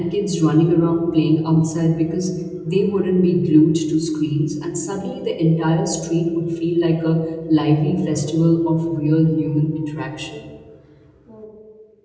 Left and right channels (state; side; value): identical; both; correlation 1.00